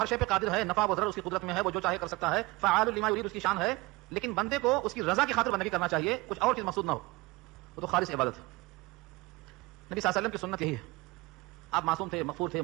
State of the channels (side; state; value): left; quieter; 22.3 dB